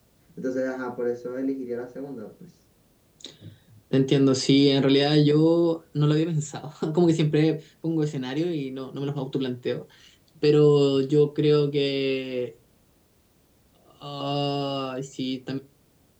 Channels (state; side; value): identical; both; correlation 1.00